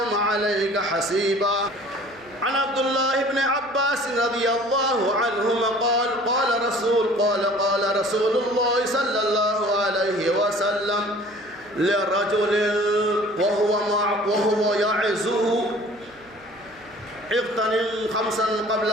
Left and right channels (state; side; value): noise; right; hum, 27 dB below the sound